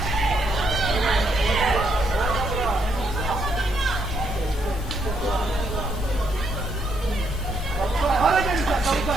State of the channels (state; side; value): normal; both; correlation 0.74